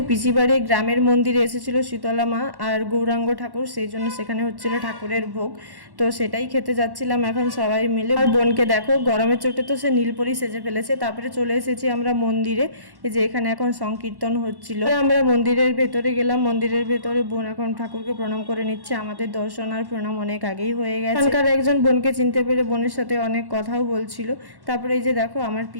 পিসি বাড়ি গ্রামের মন্দিরে এসেছিল শীতলা মা আর গৌরাঙ্গ ঠাকুর, সেই জন্য সেখানে হচ্ছিল ঠাকুরের ভোগ। তো সেটাই খেতে যাচ্ছিলাম এখন সবাই মিলে। আর বোনকে দেখো গরমের চোটে তো সে নীলপরি সেজে ফেলেছে। তারপরে চলে এসেছি আমরা মন্দিরে, এই যে এখানে এখন সংকীর্তন হচ্ছিল। আমরা মন্দিরের ভেতরে গেলাম। মন্দিরের ভেতরে বোন এখন ঠাকুরকে প্রণাম করে নিচ্ছে। আমাদের দর্শন আর প্রণাম অনেক আগেই হয়ে গেছে। এখানকার একজন বোনকে চিনতে পেরে বোনের সাথে অনেক কথাও বলছিল। তারপরে এই যে দেখো আমার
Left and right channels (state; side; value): late; left; 1.1 ms